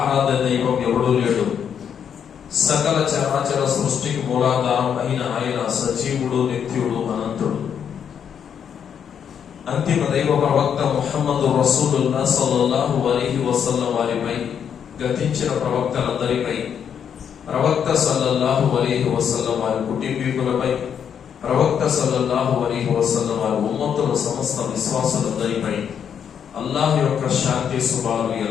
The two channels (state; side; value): quieter; right; 8.0 dB